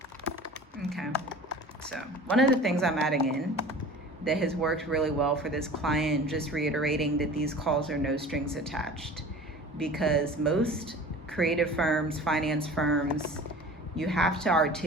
Okay, so one of the things I'm adding in that has worked really well for this client, just reiterating that these calls are no strings attached, because most creative firms, finance firms, you have to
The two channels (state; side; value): normal; both; correlation 0.41